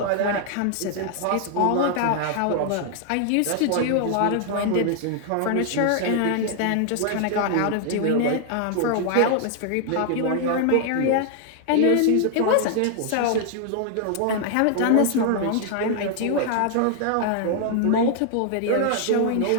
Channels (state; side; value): different; both; correlation 0.00